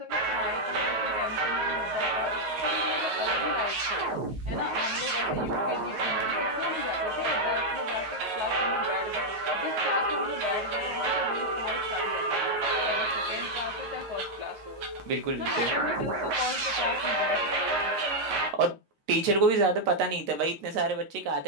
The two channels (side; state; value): left; late; 10 ms